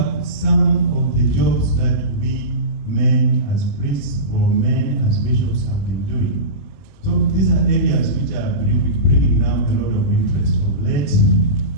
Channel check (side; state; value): right; late; 22 ms